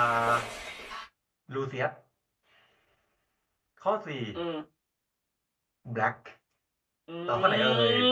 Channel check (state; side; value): identical; both; correlation 1.00